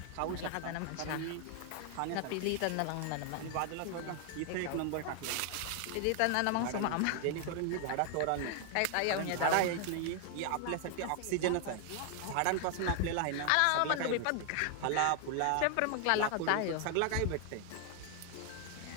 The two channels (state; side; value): different; both; correlation 0.00